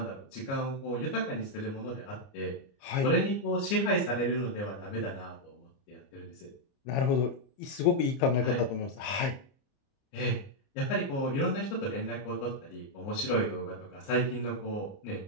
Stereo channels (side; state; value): right; late; 29 ms